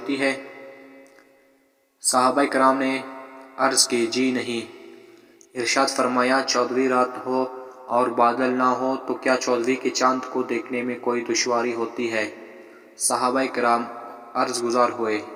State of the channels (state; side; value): identical; both; correlation 1.00